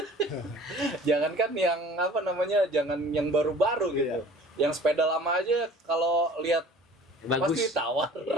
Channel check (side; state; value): both; normal; correlation 0.47